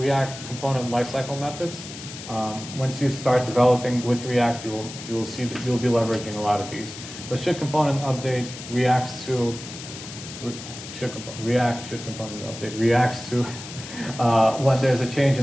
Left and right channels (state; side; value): noise; left; hiss, 12 dB below the sound